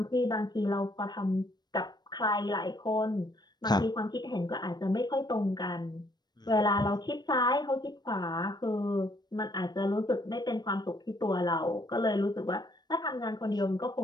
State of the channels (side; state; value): right; late; 0.20 ms